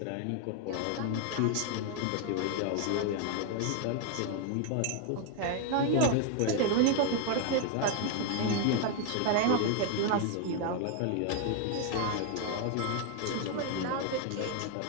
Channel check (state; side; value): different; both; correlation 0.00